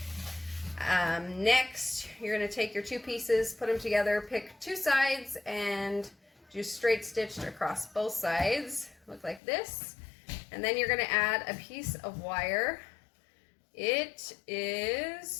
Next, you're going to take your two pieces, put them together, pick two sides, and do straight stitched across both sides. Look like this. And then you're going to add a piece of wire. It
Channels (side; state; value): right; drops out; at 9.4 s